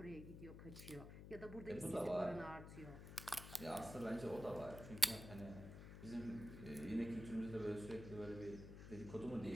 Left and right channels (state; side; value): noise; left; hum, 10 dB below the sound